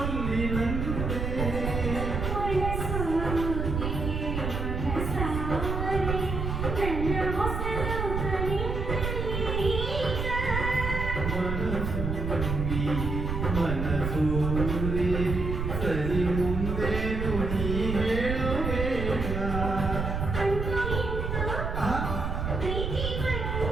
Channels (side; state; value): right; noise; rumble, 2 dB below the sound